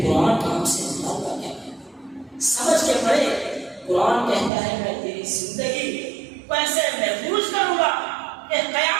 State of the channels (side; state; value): left; drops out; at 4.5 s